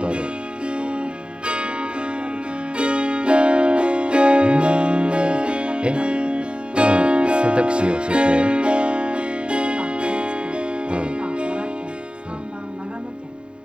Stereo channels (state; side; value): late; left; 0.052 ms